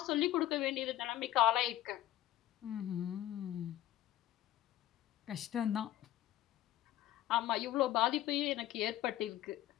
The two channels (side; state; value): right; quieter; 13.8 dB